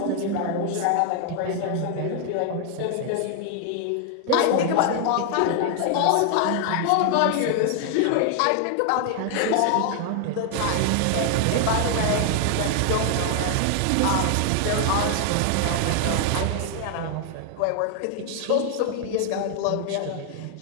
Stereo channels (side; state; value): both; different; correlation 0.00